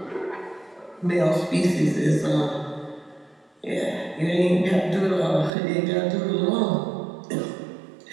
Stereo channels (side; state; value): left; drops out; at 5.5 s